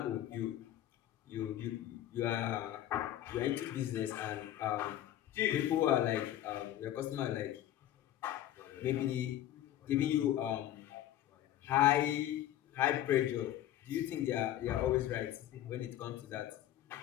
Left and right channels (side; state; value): right; quieter; 12.6 dB